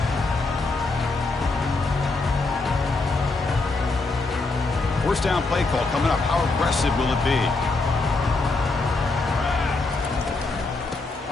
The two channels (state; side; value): quieter; right; 3.5 dB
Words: First down play call coming up. How aggressive will it be?